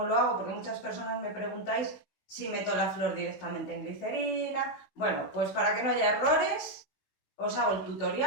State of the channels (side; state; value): right; late; 16 ms